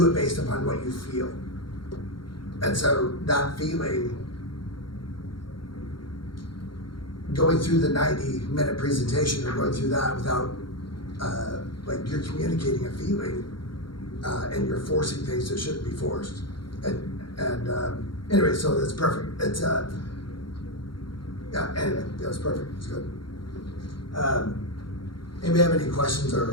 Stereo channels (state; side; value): late; right; 0.73 ms